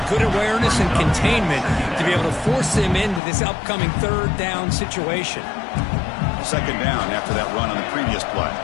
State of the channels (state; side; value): drops out; right; at 3.2 s